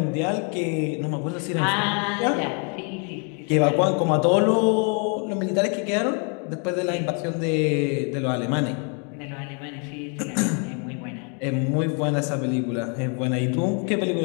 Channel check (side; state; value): right; quieter; 38.1 dB